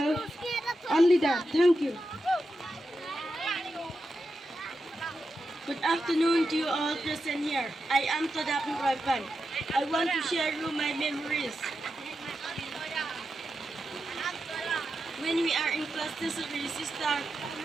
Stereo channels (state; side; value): normal; both; correlation 0.88